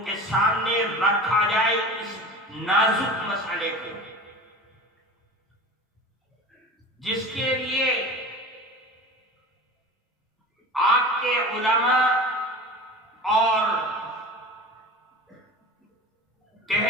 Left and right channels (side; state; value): both; normal; correlation 0.34